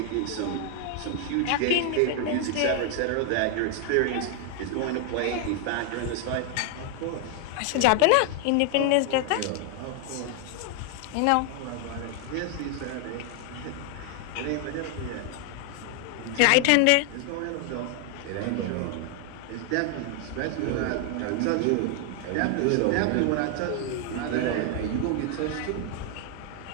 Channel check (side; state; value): both; different; correlation 0.00